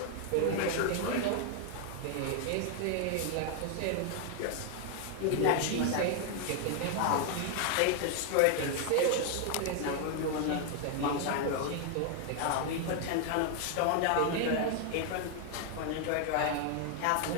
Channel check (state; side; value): different; both; correlation 0.00